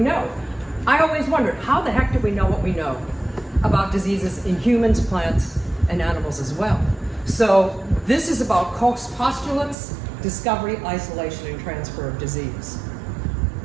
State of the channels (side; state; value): left; drops out; at 9.8 s